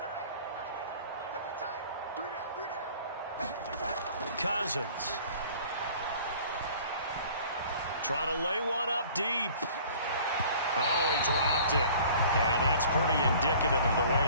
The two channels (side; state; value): both; inverted; correlation -0.49